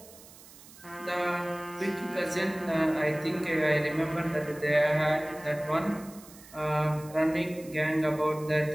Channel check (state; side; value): noise; right; hiss, 20 dB below the sound